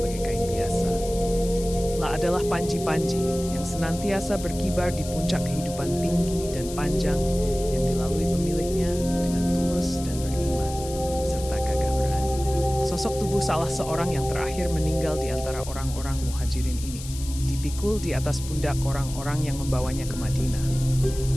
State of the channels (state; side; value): noise; left; hiss, 13 dB below the sound